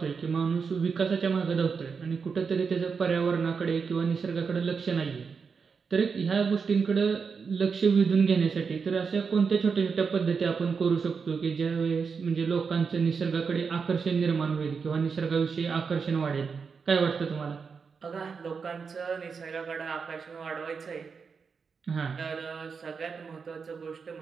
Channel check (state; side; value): quieter; left; 5.6 dB